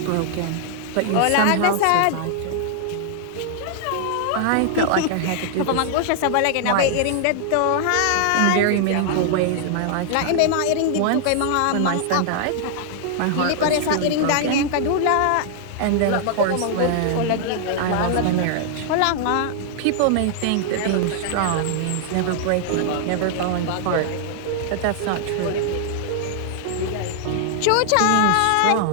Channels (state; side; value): different; both; correlation 0.00